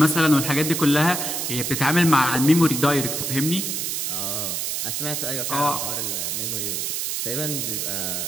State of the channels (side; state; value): right; noise; hiss, 1 dB below the sound